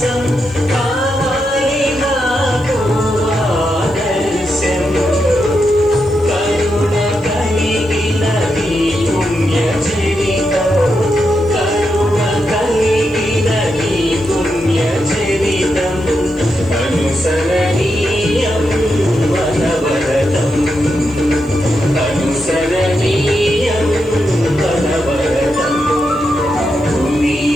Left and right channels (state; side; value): noise; left; hiss, 30 dB below the sound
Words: కావాలి నాకు ఆదర్శం కరుణ కలిగిన నీ పుణ్య చరితం కరుణ కలిగిన నీ పుణ్య చరితం అనుసరణీయం వనవరతం అనుసరణీయం వనవరతం